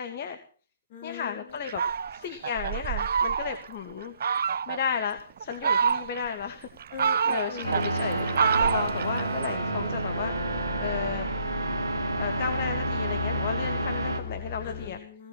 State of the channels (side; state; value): both; inverted; correlation -0.67